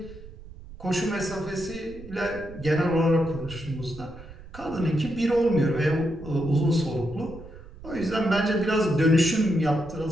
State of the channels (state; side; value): noise; right; rumble, 16 dB below the sound